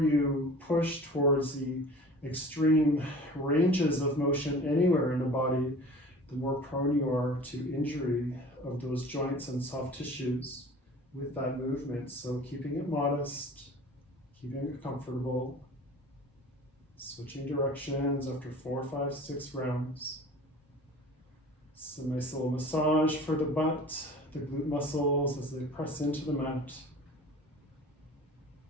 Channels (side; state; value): both; normal; correlation 0.42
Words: push towards the extreme ranges of motion anywhere in the body, the more prone you are to injury of those joints and soft tissues with that movement. So keeping it modest, keeping it comfortable, switching directions after 4, 5, 6 rounds. It's a nice little massage for the butt, the glute muscles as they press into the mat.